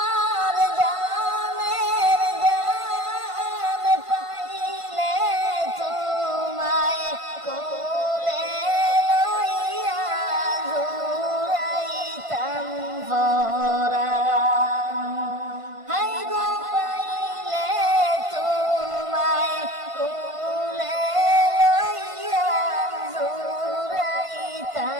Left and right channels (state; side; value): late; left; 1.5 ms